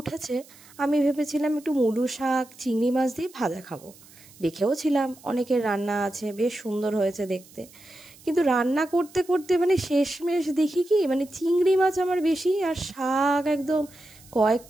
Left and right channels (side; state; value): right; noise; hiss, 24 dB below the sound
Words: উঠেছে, আমি ভেবেছিলাম একটু মূলো শাক চিংড়ি মাছ দিয়ে ভাজা খাবো। দেখেও ছিলাম অনেকের রান্না আছে, বেশ সুন্দর হয়েছে দেখতে। কিন্তু রান্না করতে করতে মানে শেষমেশ দেখি কি, মানে চিংড়ি মাছ আমার বেশি আর শাক একদম